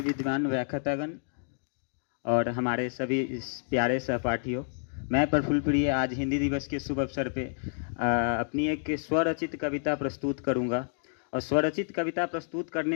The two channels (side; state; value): right; silent; digital silence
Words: विद्वान व्याख्यातागण और हमारे सभी इस प्यारे सहपाठियों, मैं प्रफुल्ल प्रिय आज हिंदी दिवस के शुभ अवसर पे अपनी एक स्वरचित कविता प्रस्तुत करूंगा। और स्वरचित कविता प्रस्तुत